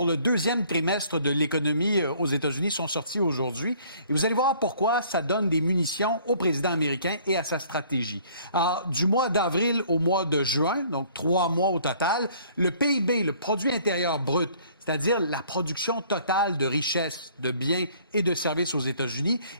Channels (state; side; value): inverted; both; correlation -0.57